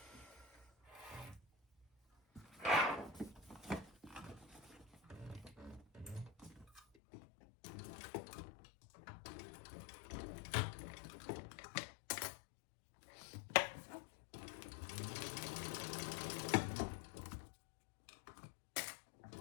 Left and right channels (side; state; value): right; drops out; at 6.8 s